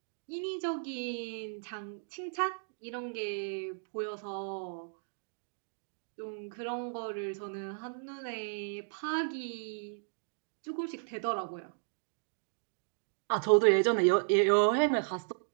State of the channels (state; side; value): silent; left; digital silence